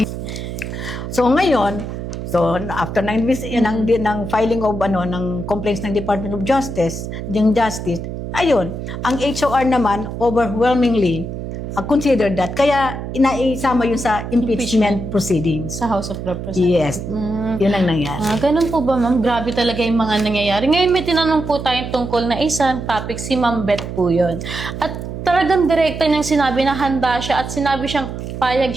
So ngayon, after ng filing of ng complaints ng Department of Justice, ayun, ang HOR naman overwhelmingly considered that. Kaya inaisama yun sa impeachment proceedings. Sa House of Representatives. Yes. Yun ang nangyari. Ganun po ba, ma'am? Grabe talaga yung mga nangyayari. Ngayon may tinanong po tayong tungkol na isang topic, si Ma'am Beth po yun. At talagang direkta niyang sinabi na handa siya at sinabi siyang payag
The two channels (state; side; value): noise; right; hum, 7 dB below the sound